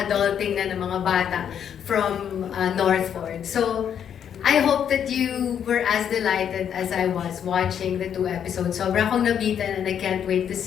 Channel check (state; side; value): quieter; right; 8.7 dB